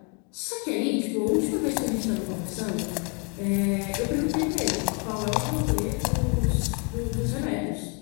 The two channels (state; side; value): quieter; right; 33.1 dB